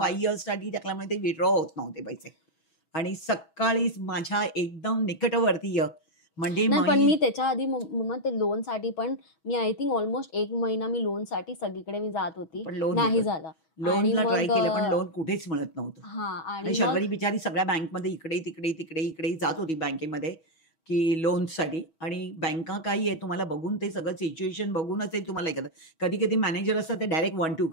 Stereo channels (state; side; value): late; right; 6.2 ms